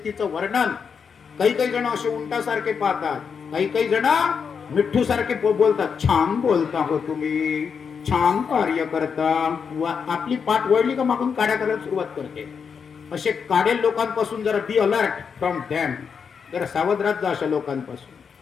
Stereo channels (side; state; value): right; quieter; 6.3 dB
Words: वर्णन काही काही जण असे उंटासारखे पाहतात, काही काही जण मिठ्ठू सारखे बोलतात. छान बोलता हो तुम्ही, छान कार्य करता. आपली पाठ वळली का मागून काड्या करायला सुरुवात करते. असे काडेल लोकांपासून जरा बी अलर्ट फ्रॉम दॅम, जरा सावध राहत जा अशा लोकांपासून.